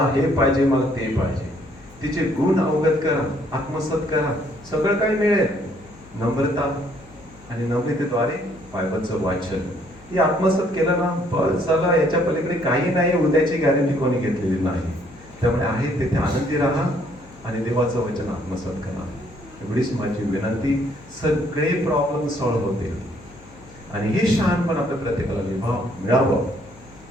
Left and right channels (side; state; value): left; noise; hum, 23 dB below the sound